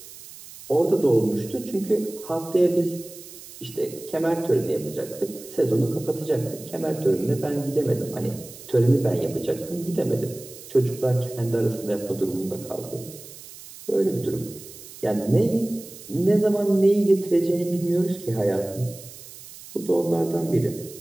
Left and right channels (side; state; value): right; noise; hiss, 17 dB below the sound